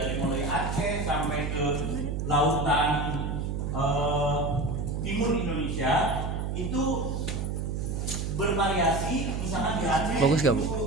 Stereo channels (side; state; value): right; noise; hum, 2 dB below the sound